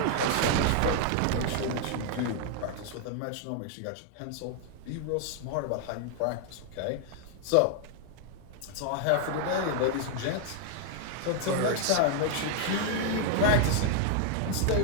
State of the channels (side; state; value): both; different; correlation 0.00